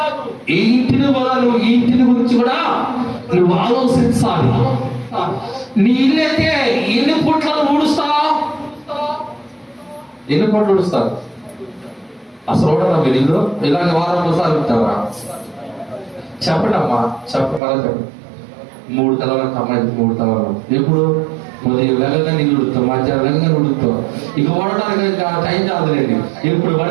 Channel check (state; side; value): drops out; left; at 17.6 s